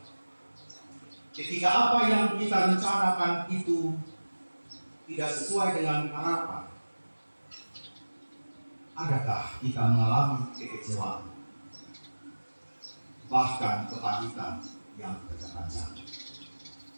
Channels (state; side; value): inverted; both; correlation -1.00